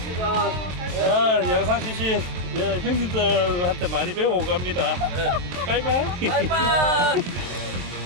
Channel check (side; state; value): left; late; 23 ms